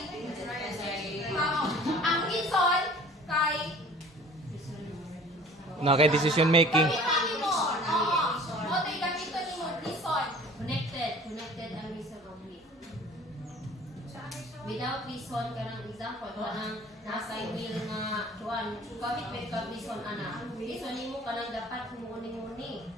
ang reason kay Na kay decision making. gamitin mo. Oo. Mo tay gamiton nimo reason. Connected ang reason of will. Without reason, kanang example, kanang nasa will nga kuan, gamit with ka reason ana. Reason nimo kanang dapat muni.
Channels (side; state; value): both; normal; correlation 0.48